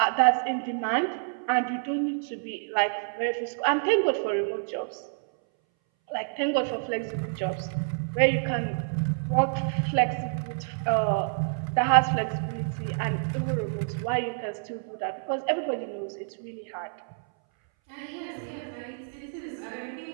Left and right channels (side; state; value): left; silent; 59 dB below the other